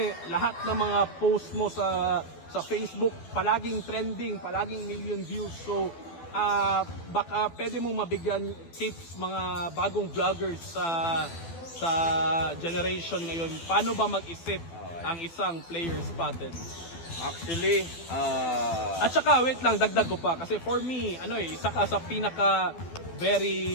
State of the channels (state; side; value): late; right; 12 ms